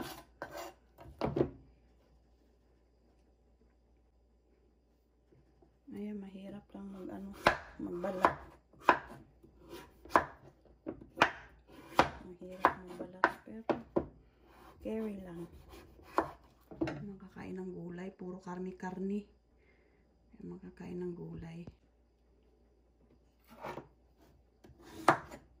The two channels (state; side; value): identical; both; correlation 1.00